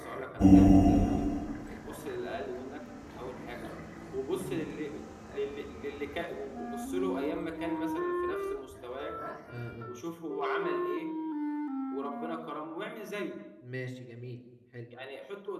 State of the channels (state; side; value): identical; both; correlation 1.00